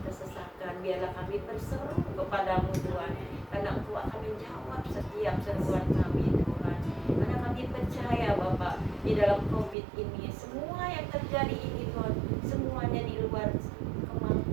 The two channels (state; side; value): drops out; left; at 9.8 s